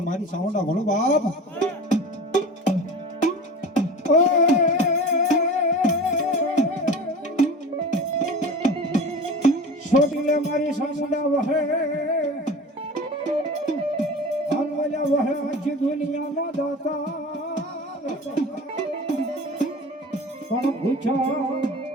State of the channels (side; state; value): both; normal; correlation 0.35